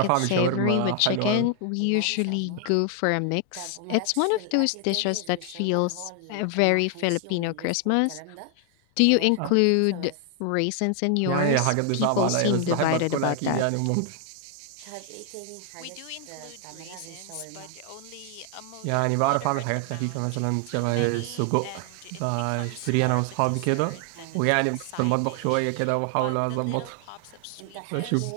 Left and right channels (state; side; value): different; both; correlation 0.00